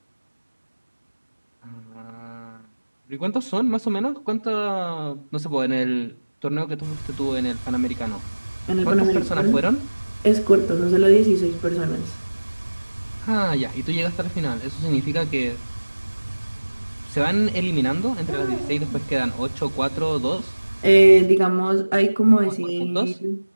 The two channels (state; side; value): inverted; both; correlation -1.00